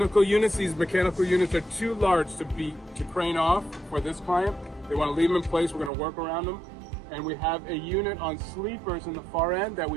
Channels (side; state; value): left; drops out; at 5.9 s